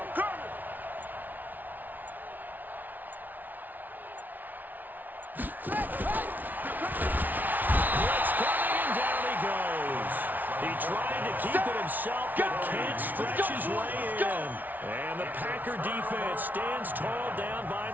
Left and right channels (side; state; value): left; late; 0.081 ms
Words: coming. Blitz coming, and down he goes. He tried to keep it himself, but can't stretch his way in. And the Packer defense stands tall down by